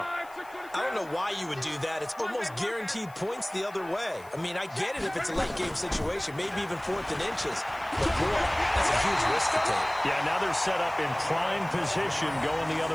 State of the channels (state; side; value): noise; left; hiss, 25 dB below the sound